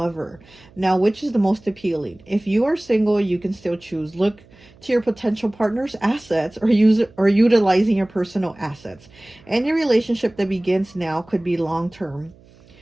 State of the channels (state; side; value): noise; right; hum, 27 dB below the sound